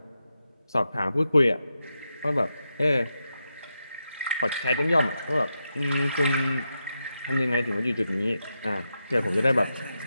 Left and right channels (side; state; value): both; inverted; correlation -0.87